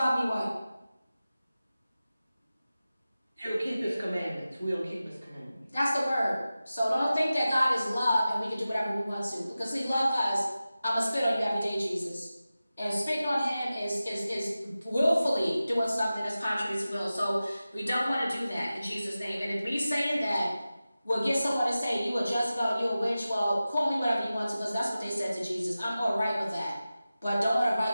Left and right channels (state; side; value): inverted; both; correlation -0.95